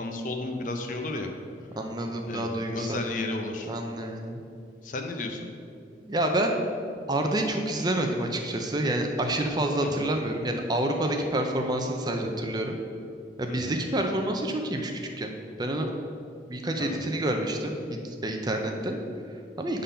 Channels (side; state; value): both; normal; correlation 0.48